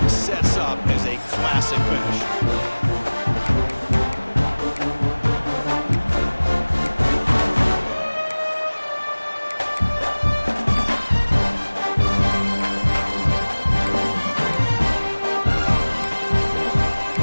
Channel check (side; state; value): both; inverted; correlation -1.00